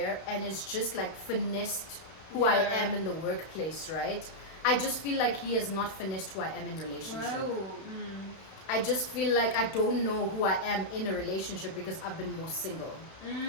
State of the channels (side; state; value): right; late; 32 ms